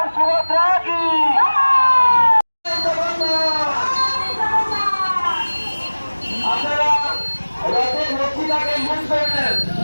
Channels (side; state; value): both; inverted; correlation -1.00